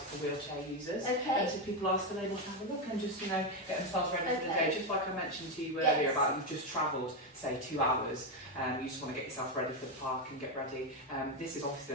wheelchair users. Okay. So people are still able to have a look and just, get themselves ready for the day. Just like I mentioned to you earlier about you've just travelled, say 2 hours, you just want to get yourself ready for the park and get ready. This is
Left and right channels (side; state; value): both; normal; correlation 0.08